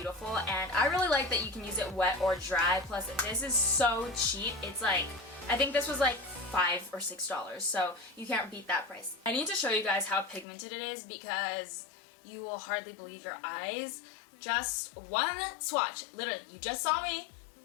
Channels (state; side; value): drops out; right; at 10.5 s